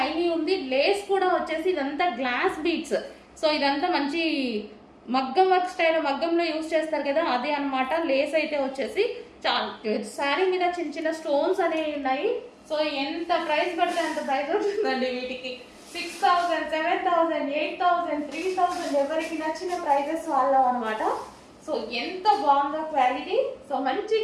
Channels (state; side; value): identical; both; correlation 1.00